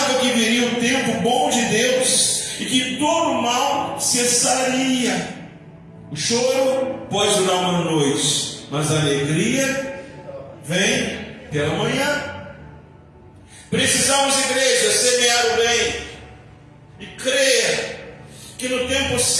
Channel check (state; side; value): identical; both; correlation 1.00